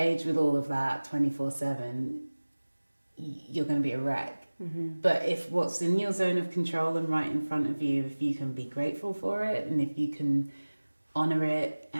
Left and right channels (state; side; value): inverted; both; correlation -1.00